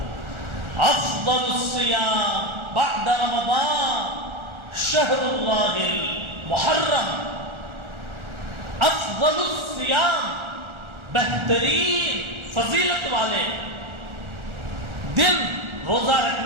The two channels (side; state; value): left; late; 1.4 ms